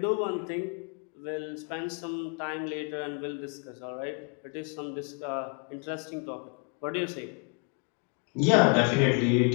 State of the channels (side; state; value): right; quieter; 35.9 dB